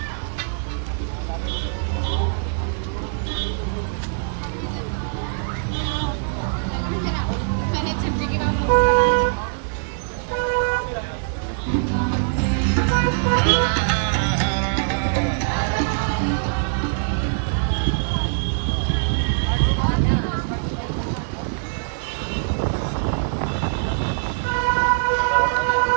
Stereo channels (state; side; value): silent; left; 60 dB below the other